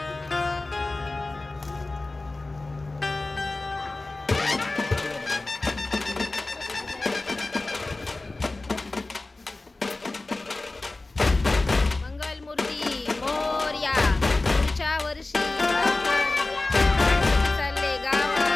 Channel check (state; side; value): quieter; right; 3.2 dB